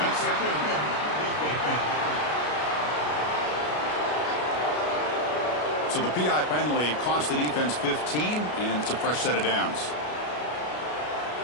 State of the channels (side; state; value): right; late; 33 ms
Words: So the PI penalty cost the defense 15, and it's a fresh set of downs.